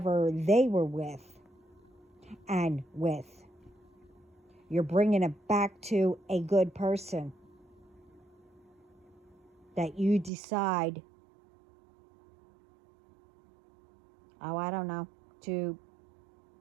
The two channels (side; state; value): left; drops out; at 10.3 s